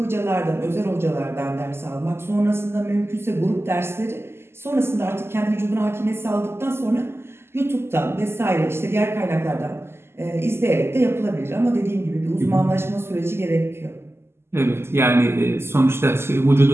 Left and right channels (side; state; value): left; late; 0.12 ms